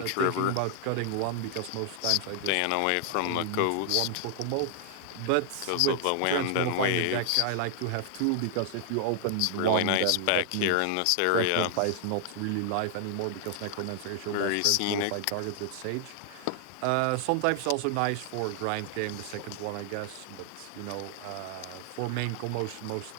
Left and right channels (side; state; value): both; different; correlation 0.00